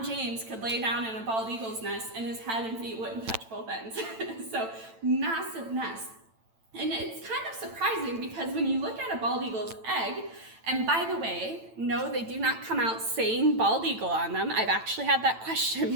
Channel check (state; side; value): late; left; 9.0 ms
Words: James could lay down in a bald eagle's nest and his head and feet wouldn't touch both ends. So massive nest. And it's kind of surprising because when you look at a bald eagle's egg, and by the way, no, they do not come out saying bald eagle on them. I've actually had that question